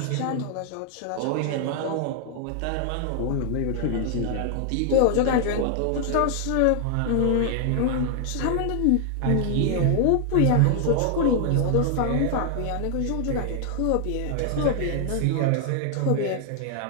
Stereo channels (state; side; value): different; both; correlation 0.00